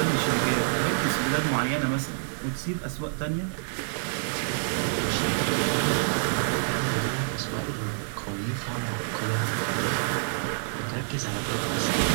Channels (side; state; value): left; silent; 60 dB below the other